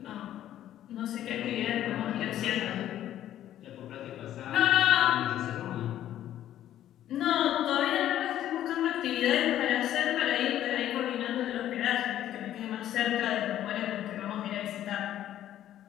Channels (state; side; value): quieter; right; 12.0 dB